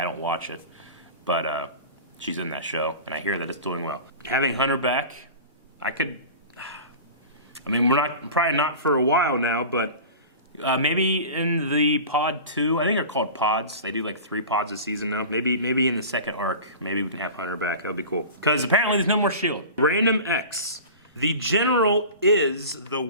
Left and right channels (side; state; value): both; inverted; correlation -0.35